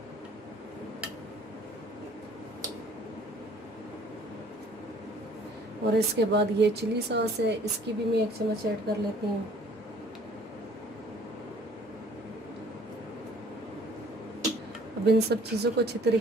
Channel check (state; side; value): normal; both; correlation 0.55